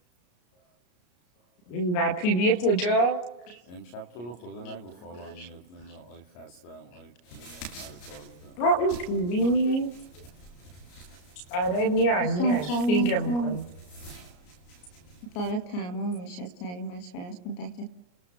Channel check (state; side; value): late; right; 33 ms